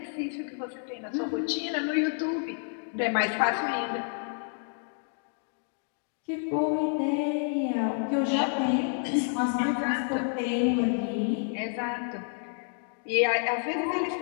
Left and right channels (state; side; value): silent; right; 58 dB below the other